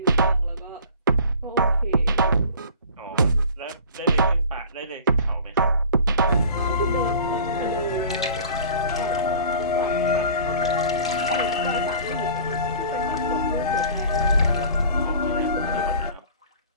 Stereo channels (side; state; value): both; inverted; correlation -0.43